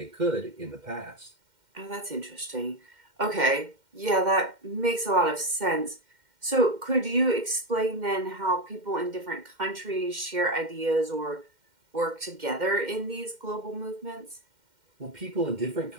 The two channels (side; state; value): left; late; 2.1 ms